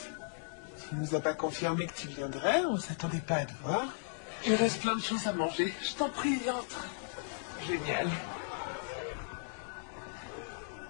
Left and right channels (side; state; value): right; silent; digital silence